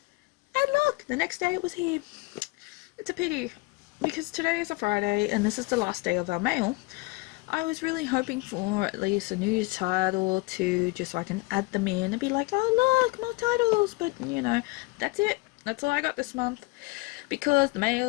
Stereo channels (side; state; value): right; quieter; 24.6 dB